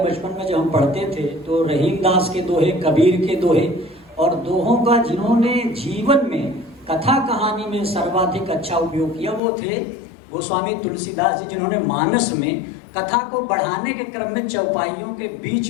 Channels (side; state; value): right; drops out; at 9.4 s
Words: में जब हम पढ़ते थे तो रहीम दास के दोहे, कबीर के दोहे, और दोहों का जिन्होंने जीवन में कथा कहानी में सर्वाधिक अच्छा उपयोग किया वो थे गोस्वामी तुलसीदास जी, जिन्होंने मानस में कथा को बढ़ाने के क्रम में चौपाइयों के बीच